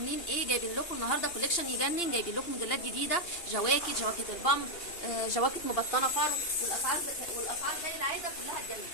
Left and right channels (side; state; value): right; late; 2.8 ms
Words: ايه؟ جايبين لكم النهارده كوليكشن يجنن. جايبين لكم موديلات جديده، جواكت البامب، جواكت مبطنه فرو، والاسعار زي العاده كلها تجنن.